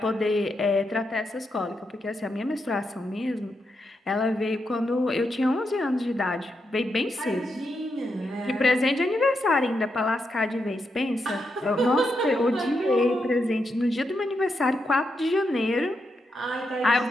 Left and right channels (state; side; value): normal; both; correlation 0.83